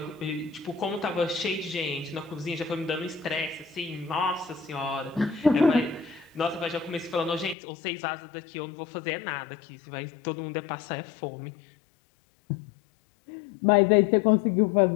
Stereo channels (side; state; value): right; drops out; at 7.6 s